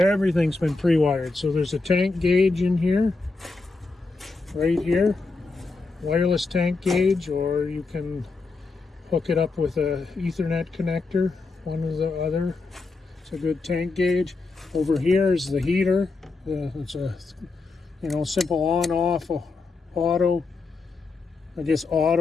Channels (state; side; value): quieter; right; 3.8 dB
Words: been pre-wired. So there's a tank gauge in here, right here, wireless tank gauge, or you can hook it up with a Ethernet connector, one or the other. It's a good tank gauge. Over here is the heater. It's a simple on-off auto, I guess